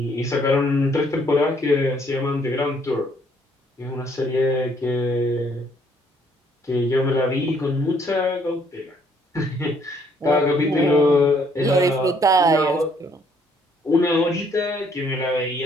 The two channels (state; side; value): normal; both; correlation 0.66